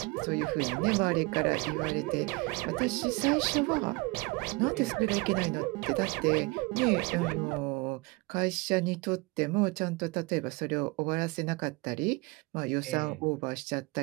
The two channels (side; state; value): left; quieter; 25.3 dB